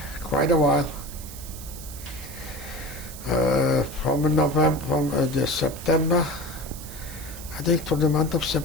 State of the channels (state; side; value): noise; right; hiss, 14 dB below the sound